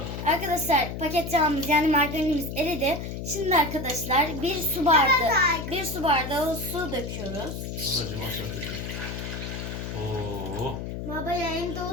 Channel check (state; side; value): noise; left; hum, 6 dB below the sound